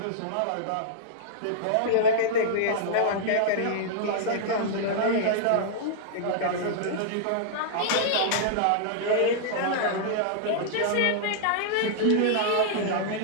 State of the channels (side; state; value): both; different; correlation -0.01